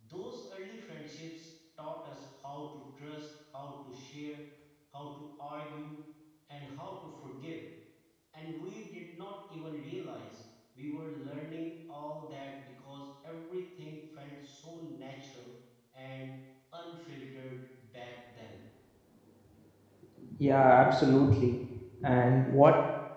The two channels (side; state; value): both; identical; correlation 1.00